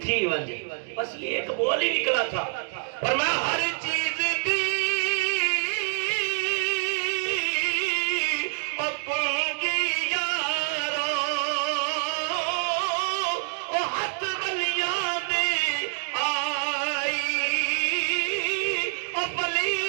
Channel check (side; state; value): left; silent; digital silence